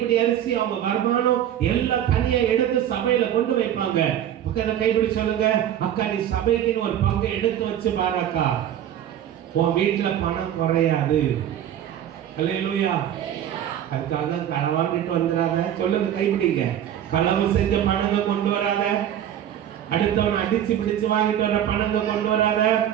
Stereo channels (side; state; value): left; quieter; 10.7 dB